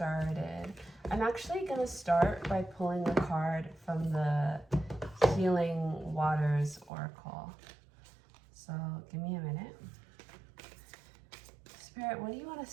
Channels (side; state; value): left; drops out; at 6.9 s